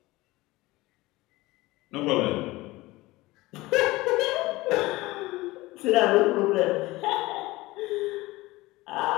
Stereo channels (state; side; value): quieter; right; 19.9 dB